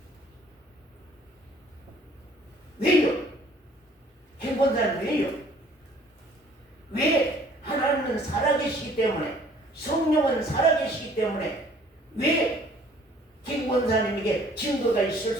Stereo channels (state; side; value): normal; both; correlation 0.56